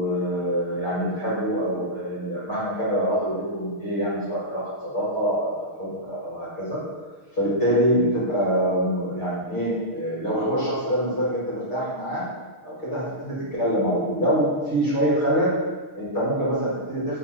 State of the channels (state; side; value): late; right; 6.5 ms